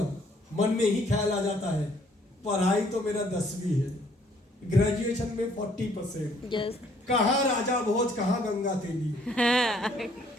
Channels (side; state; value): both; normal; correlation 0.63